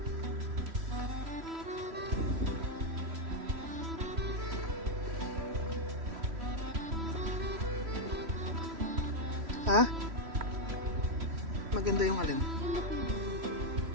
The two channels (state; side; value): late; left; 3.1 ms